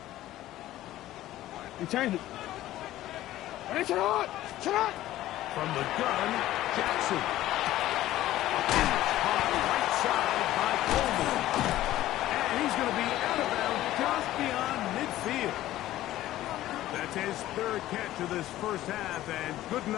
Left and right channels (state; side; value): quieter; right; 14.6 dB